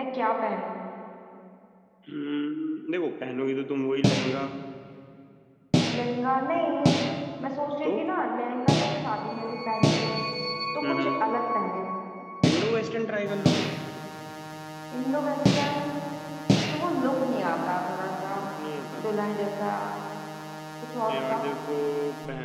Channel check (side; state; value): both; identical; correlation 1.00